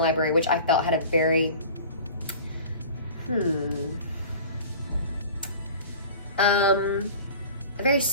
which I felt had a very a very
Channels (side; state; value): both; inverted; correlation -0.40